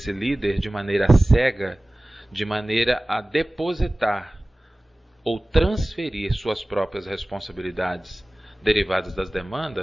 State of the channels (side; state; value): both; normal; correlation 0.98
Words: líder de maneira cega, de maneira a depositar ou transferir suas próprias responsabilidades derivadas das